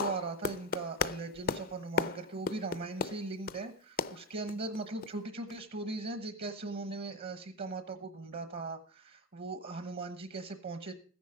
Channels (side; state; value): both; normal; correlation 0.11